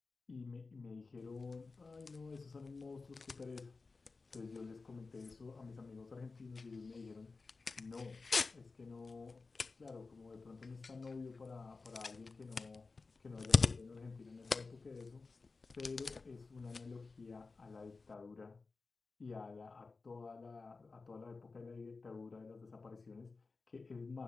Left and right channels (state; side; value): quieter; right; 4.1 dB